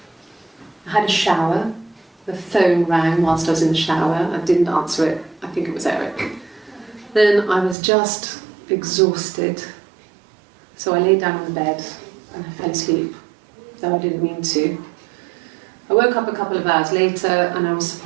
I had a shower. The phone rang whilst I was in the shower. I didn't answer it. I think it was Eric. Then I was just exhausted. So I lay down on the bed and I fell asleep, though I didn't mean to. I woke up a couple of hours later and I was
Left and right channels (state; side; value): drops out; left; at 7.8 s